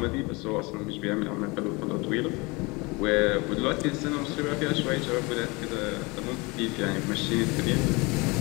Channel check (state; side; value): quieter; right; 26.1 dB